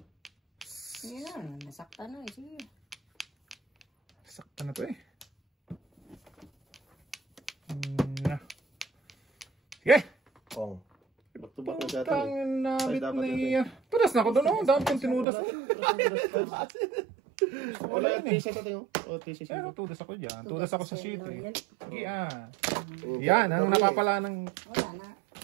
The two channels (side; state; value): left; drops out; at 15.2 s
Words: Sige na. Nasakta na eh. Sige. Sakta na to eh. Na. Sige! Kong. Back to back na sa ating. Putang nabit dapat na natin. iya. Tudas na ako doon. Ang dami kong tinudas. Wala yung t-shirt natin, oh. O, t-shirt Pero yun. tudas ako dyan. Tudas ako sa sheet eh. Yan. Sige Yan, ang napapala ng Wala na.